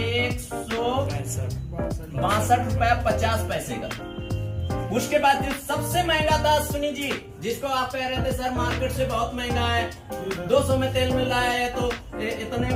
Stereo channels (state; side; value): identical; both; correlation 1.00